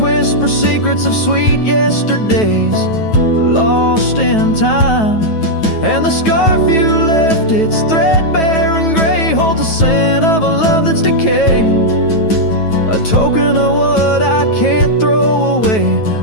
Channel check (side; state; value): right; late; 9.2 ms